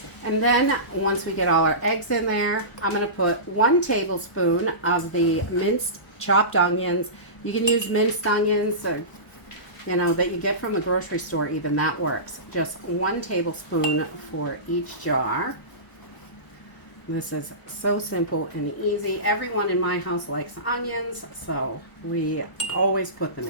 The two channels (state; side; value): late; right; 1.0 ms